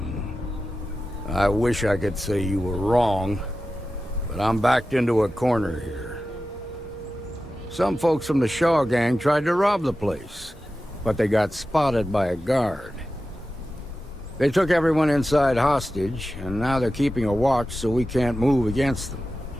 I wish I could say you were wrong, but I'm backed into a corner here. Some folks from the Shaw gang tried to rob the place, but they got spotted by a guard. They took everyone inside hostage, and now they're keeping a watch so we can't move against them.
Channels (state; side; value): normal; both; correlation 0.93